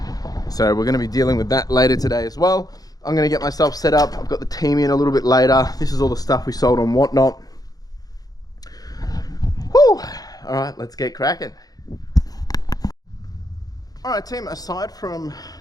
So we're going to be dealing with that later today as well. I'm going to get myself set up. I've got the team in a little bit later. This is all the stuff we sold on Whatnot. Whew. All right, let's get cracking. All right, team, aside from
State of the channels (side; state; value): right; late; 0.18 ms